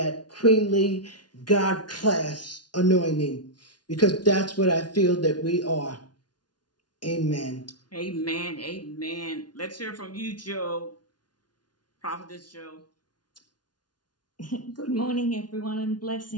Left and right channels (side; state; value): right; late; 0.70 ms